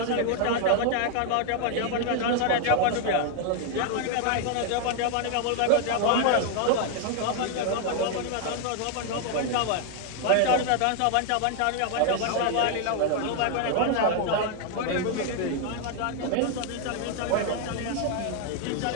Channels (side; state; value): both; different; correlation 0.00